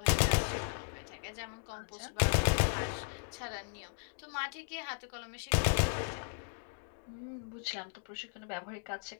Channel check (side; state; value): right; silent; digital silence